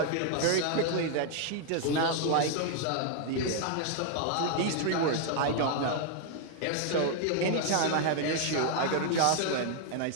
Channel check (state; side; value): different; both; correlation 0.00